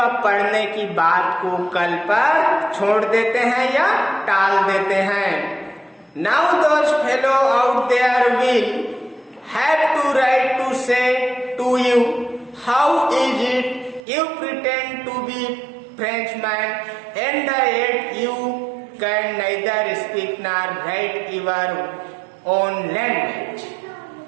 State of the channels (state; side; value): drops out; left; at 14.0 s